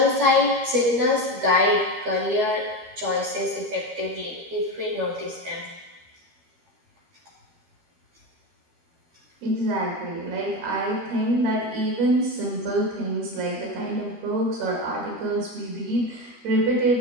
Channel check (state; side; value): late; left; 13 ms